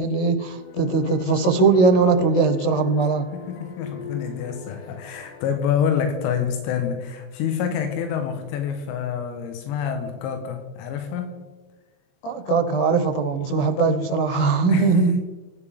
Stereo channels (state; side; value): late; right; 22 ms